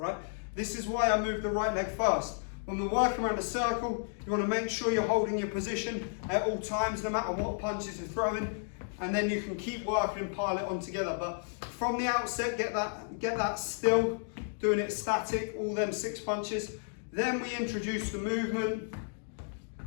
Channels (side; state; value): right; silent; digital silence